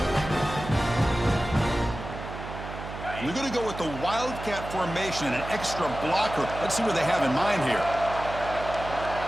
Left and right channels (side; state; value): right; noise; hum, 10 dB below the sound